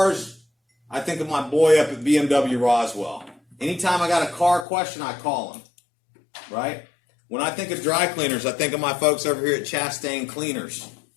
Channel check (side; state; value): right; drops out; at 4.7 s